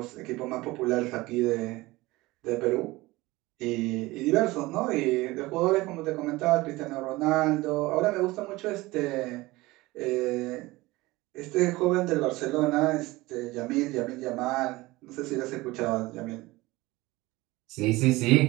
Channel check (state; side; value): quieter; left; 20.4 dB